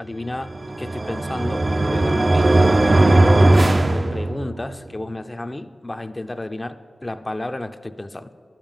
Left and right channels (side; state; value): both; normal; correlation 0.98